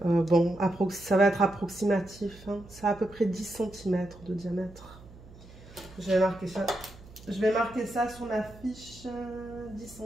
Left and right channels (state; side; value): noise; right; hum, 20 dB below the sound